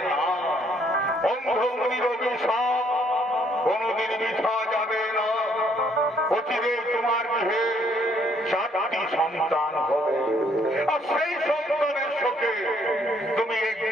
না। অন্ধমুনির অভিশাপ কোনদিন মিথ্যা যাবে না। অচিরে তোমার গৃহে 4টি সন্তান হবে, আর সেই সন্তানের শোকে তুমি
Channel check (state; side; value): normal; both; correlation 0.67